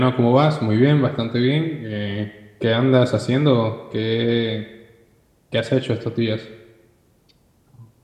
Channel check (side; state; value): both; identical; correlation 1.00